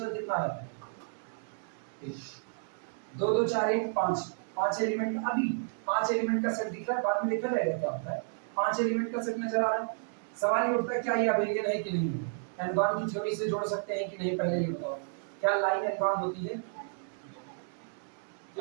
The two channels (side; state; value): left; silent; digital silence